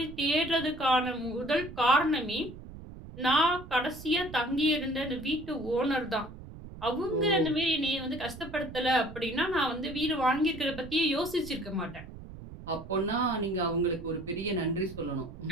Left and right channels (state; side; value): noise; right; rumble, 14 dB below the sound